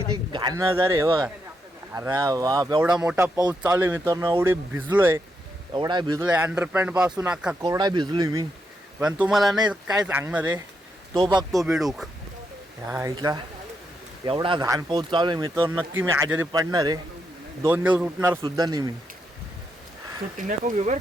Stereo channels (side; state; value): both; normal; correlation 0.81